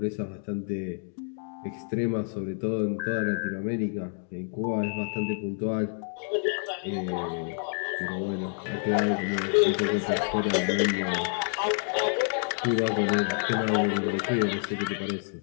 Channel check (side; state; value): right; silent; 59 dB below the other